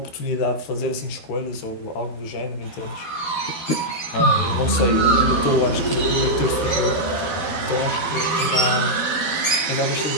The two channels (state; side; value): late; right; 12 ms